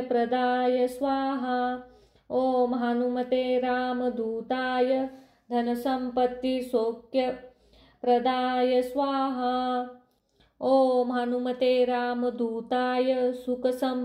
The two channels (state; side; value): identical; both; correlation 1.00